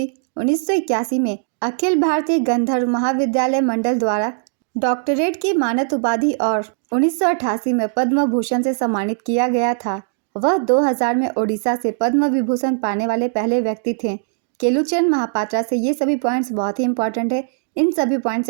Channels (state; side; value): silent; left; digital silence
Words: 1981 में अखिल भारतीय गंधर्व महाविद्यालय मंडल द्वारा डॉक्टरेट की मानद उपाधि और 1988 में पद्म भूषण से सम्मानित किया गया था। वह 2000 में ओडिशा से पद्म विभूषण पाने वाले पहले व्यक्ति थे। केलुचरण महापात्रा से ये सभी पॉइंट्स बहुत ही इंपॉर्टेंट है। इन सभी पॉइंट